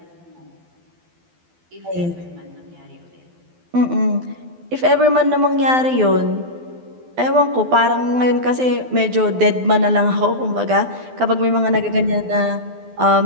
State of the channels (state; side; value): late; left; 12 ms